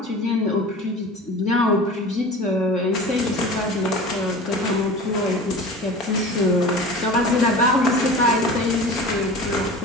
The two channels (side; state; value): both; normal; correlation 0.37